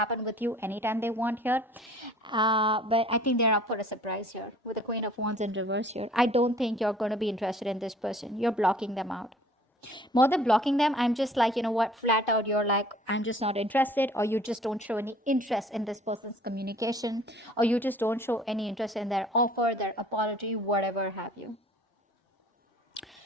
with you anytime they want here, but I think they're up for a surprise here with the Queen of Wands in reverse here. I don't think you're going to be interested in this person. You're blocking them out. More than blocking them, I'm just like, flat out, you're like, I'm just not interested, or you just don't show any interest in this person's communication, or you just don't show any interest in their offer, their apology, whatever have you.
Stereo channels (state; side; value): normal; both; correlation 0.52